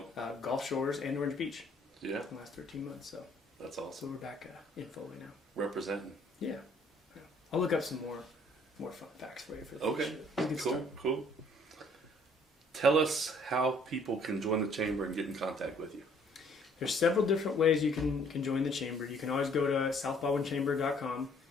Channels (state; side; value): normal; both; correlation 0.60